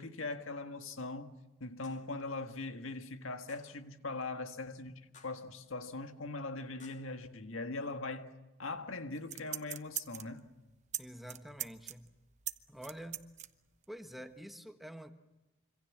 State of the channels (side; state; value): both; normal; correlation -0.03